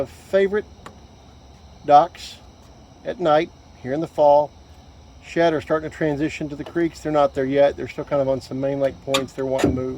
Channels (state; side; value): identical; both; correlation 1.00